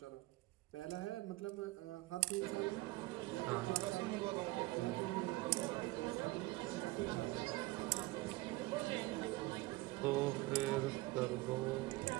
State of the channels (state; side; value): quieter; left; 20.5 dB